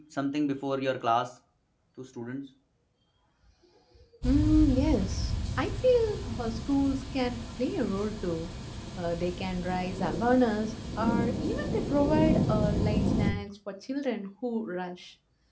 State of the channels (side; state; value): both; identical; correlation 1.00